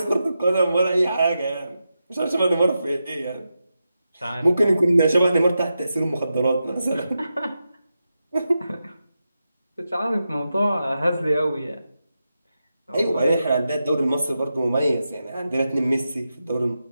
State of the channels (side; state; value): both; inverted; correlation -0.89